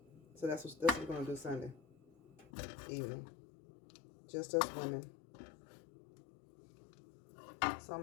So that's what we're going to do Sunday evening. Just us women. So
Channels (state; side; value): drops out; right; at 2.5 s